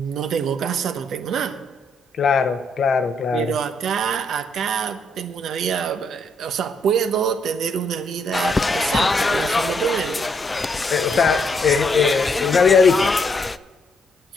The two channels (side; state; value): both; normal; correlation 0.73